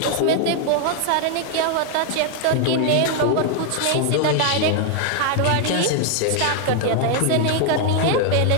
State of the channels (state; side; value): different; both; correlation 0.00